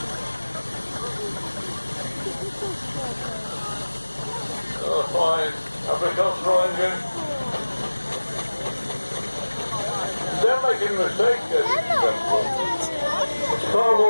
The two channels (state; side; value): inverted; both; correlation -1.00